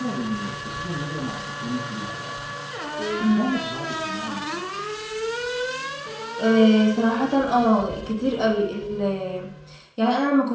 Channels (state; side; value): identical; both; correlation 1.00